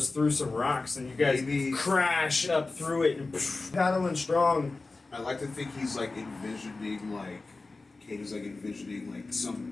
through some rocks, and you guys crash up through it and paddling strong. I like to think he's like envisioning, like, Katie's like envisioning, like,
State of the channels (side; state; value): right; quieter; 3.5 dB